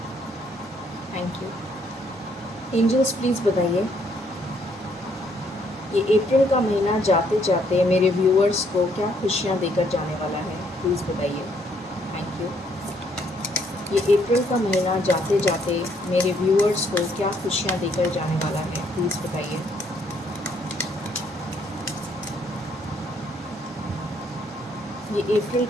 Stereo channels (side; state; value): both; normal; correlation 0.69